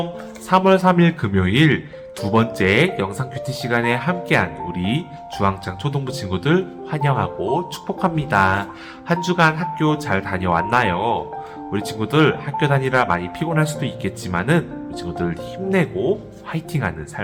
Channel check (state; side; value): identical; both; correlation 1.00